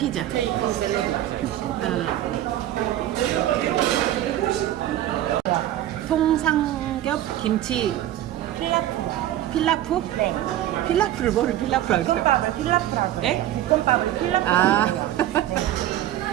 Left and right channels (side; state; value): left; quieter; 13.1 dB